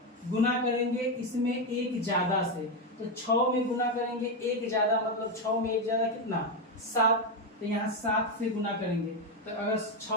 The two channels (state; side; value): normal; both; correlation 0.08